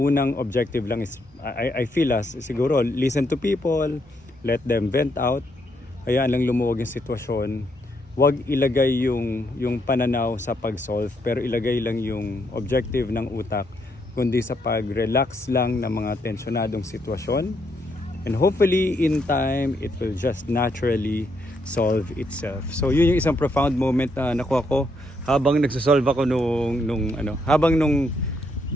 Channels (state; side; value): normal; both; correlation 0.76